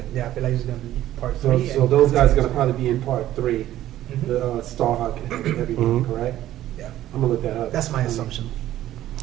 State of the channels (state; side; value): quieter; left; 13.4 dB